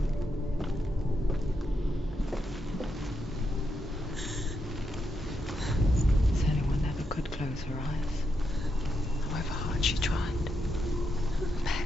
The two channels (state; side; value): normal; both; correlation 0.82